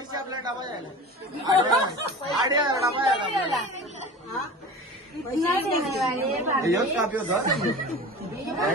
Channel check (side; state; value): both; normal; correlation 0.35